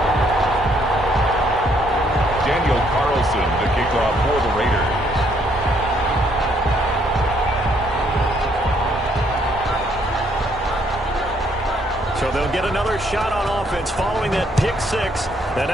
Daniel Carlson to kick off for the Raiders. So they'll get another shot on offense following that pick 6. And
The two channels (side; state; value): both; normal; correlation 0.69